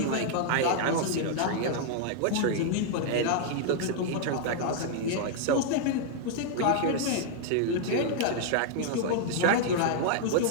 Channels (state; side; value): different; both; correlation 0.00